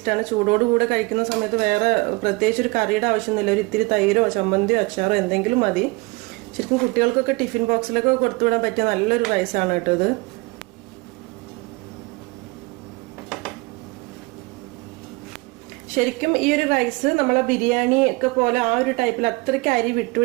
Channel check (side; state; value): left; quieter; 24.9 dB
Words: ചൂടോടുകൂടെ കഴിക്കുന്ന സമയത്ത് വേറെ പ്രത്യേകിച്ച് ഒരു കറിയുടെ ആവശ്യമൊന്നുമില്ല. ഒരു ഇത്തിരി തൈരോ ചമ്മന്തിയോ അച്ചാറോ എന്തെങ്കിലും മതി. ശരിക്കും കുട്ടികൾക്കൊക്കെ ടിഫിൻ ബോക്സിലൊക്കെ കൊടുത്തുവിടാൻ പറ്റിയ നല്ലൊരു റൈസാണ് കേട്ടോ ഇത്. ശരിക്കും ഈ ഒരു റൈസ് നമ്മളെ ബിരിയാണി ഒക്കെ പോലെ ആ ഒരു ടൈപ്പിൽ അത്രയ്ക്ക് അരി